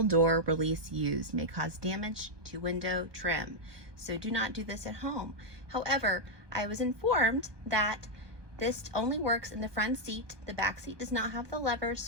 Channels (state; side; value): late; left; 1.2 ms